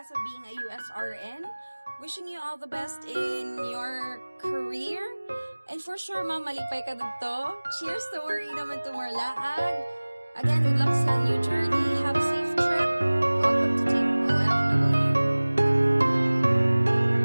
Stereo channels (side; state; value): both; inverted; correlation -1.00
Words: of being a USRN. Wishing you all the best in your career. And for sure, ma'am, malipay ka dito. Cheers to worry naman to more laag. Again, good luck sa new journey. Have a safe trip. Welcome to Team OFW.